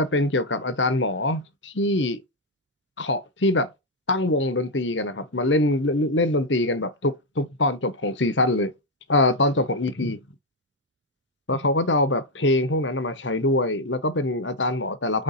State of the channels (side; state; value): both; normal; correlation 0.03